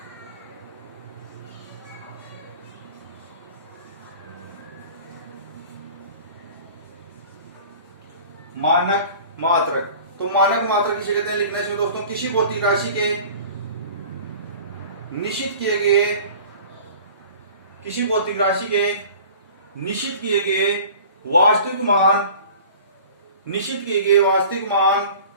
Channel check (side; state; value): both; inverted; correlation -0.44